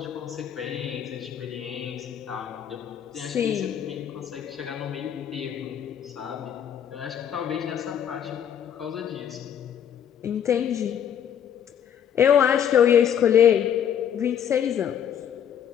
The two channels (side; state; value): right; quieter; 9.0 dB